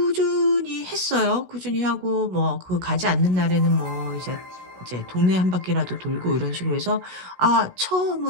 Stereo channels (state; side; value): late; left; 16 ms